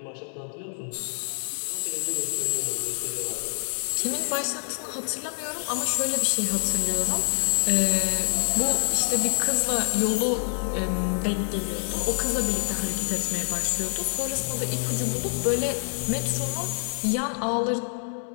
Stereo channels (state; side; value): silent; right; digital silence